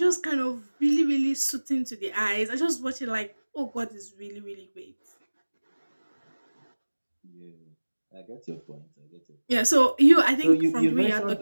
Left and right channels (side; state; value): both; inverted; correlation -1.00